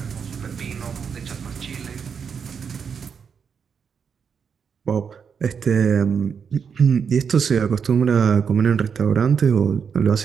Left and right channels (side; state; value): left; quieter; 6.6 dB